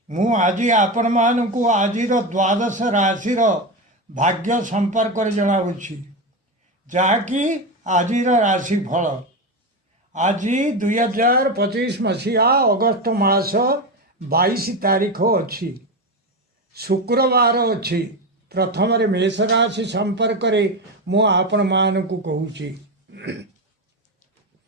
मु आज आपण मानू आज द्वादश राशि भाग्य संपर्क जनावुछि जहाँकि आज राशि फल आज 2025 मसीहा अगस्त मास 22 तारीख अच्छी शुक्रवार अच्छी प्रथम मेष राशि संपर्क मु आपण मानू कहूँ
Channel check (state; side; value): normal; both; correlation 0.17